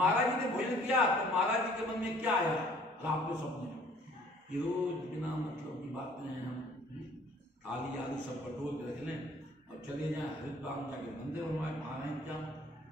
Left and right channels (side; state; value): both; normal; correlation 0.56